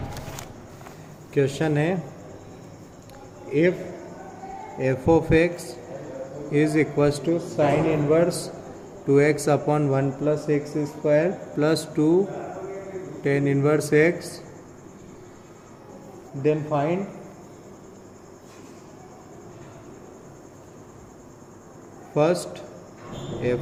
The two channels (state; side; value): identical; both; correlation 1.00